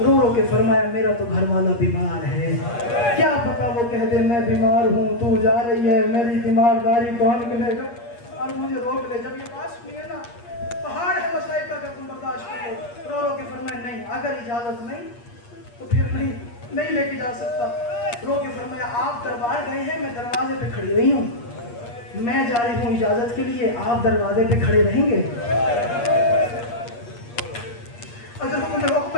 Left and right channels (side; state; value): right; late; 8.5 ms